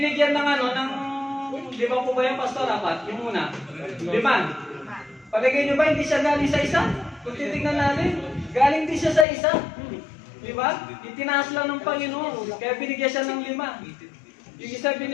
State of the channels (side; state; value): right; drops out; at 9.2 s